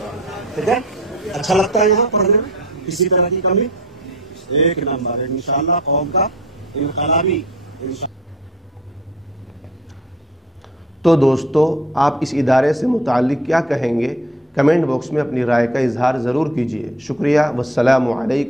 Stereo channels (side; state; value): both; normal; correlation 0.47